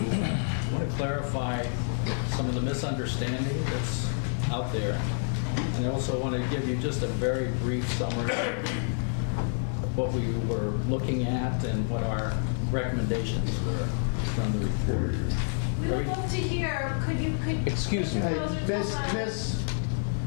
want to clarify some of the misunderstanding that's out there. And I also want to give you just a very brief summary of what we were looking at and what our recommendations were from the report. We would love to hear, could Excuse me. closer to the mic? Miss.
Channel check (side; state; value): right; silent; 59 dB below the other